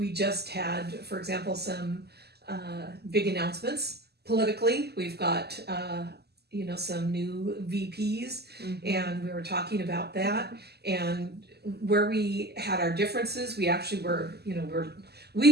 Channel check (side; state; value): left; late; 0.47 ms